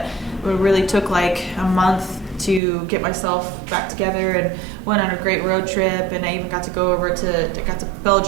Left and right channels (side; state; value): left; drops out; at 2.6 s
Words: it really took like a month to get myself back together, and went on a great road trip, and I even got to go over to